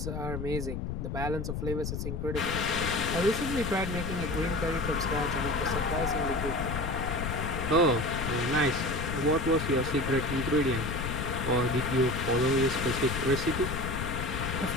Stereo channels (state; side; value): noise; left; rumble, 4 dB below the sound